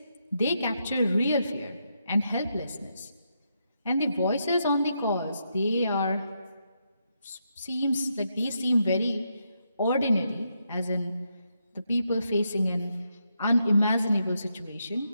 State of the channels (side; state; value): both; inverted; correlation -0.81